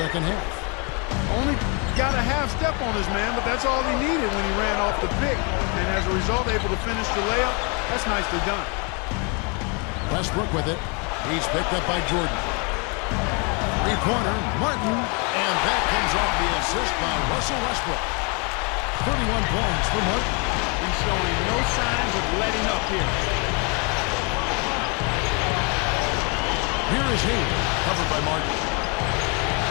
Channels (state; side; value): quieter; right; 33.7 dB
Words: half. Only got a half step on his man, but that's all he needed when he ran off the pick. And as a result, able to finish the layup. That's nicely done. Westbrook with it. He's picked up by Jordan. Three-pointer, Martin, and that comes off the assist by Russell Westbrook. 31 points for Martin. He's showing no signs of letting up here. Here is Hayward, covered by Martin.